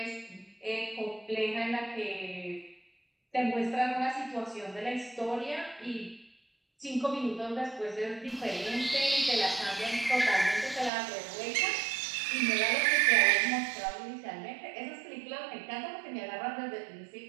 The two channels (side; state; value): left; drops out; at 10.9 s